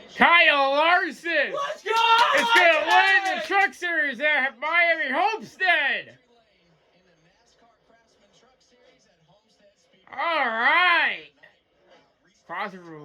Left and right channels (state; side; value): identical; both; correlation 1.00